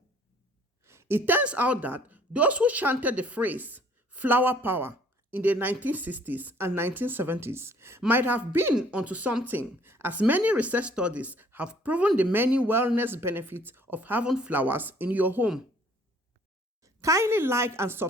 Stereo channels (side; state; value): both; normal; correlation 0.58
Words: It turns out that those who chanted the phrase flower power in the 1960s and 1970s might have been onto something, as many research studies have proven the many wellness benefits of having flowers in your home. Kindly like and